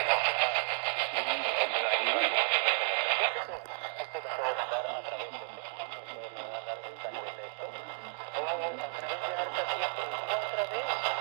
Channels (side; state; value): left; silent; digital silence